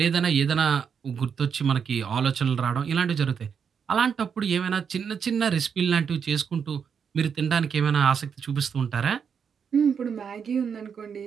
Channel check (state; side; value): quieter; left; 6.9 dB